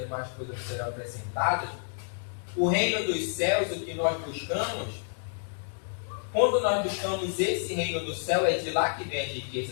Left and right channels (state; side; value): silent; right; digital silence